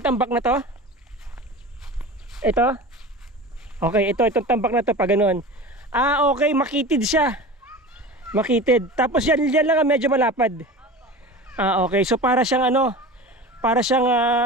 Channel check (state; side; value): normal; both; correlation 0.33